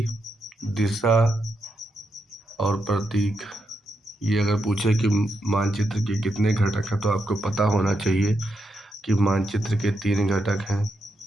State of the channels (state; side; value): normal; both; correlation 0.83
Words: दिशा और प्रतीक। ये अगर पूछे कि मानचित्र के कितने घटक हैं तो आपको पता होना चाहिए कि मानचित्र के 3 घटक हैं: